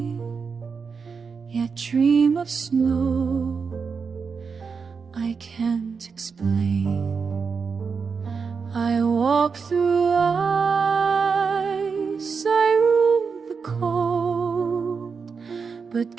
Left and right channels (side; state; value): left; quieter; 5.5 dB